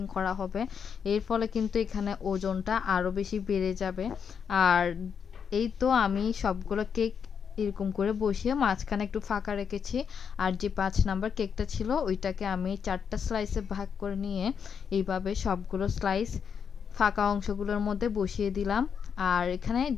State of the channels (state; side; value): quieter; right; 7.0 dB